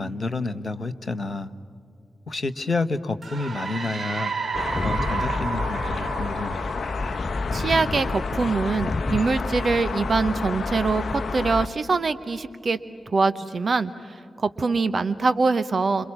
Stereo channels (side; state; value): both; normal; correlation 0.88